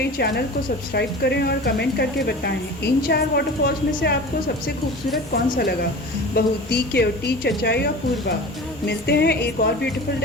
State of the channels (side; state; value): both; normal; correlation 0.36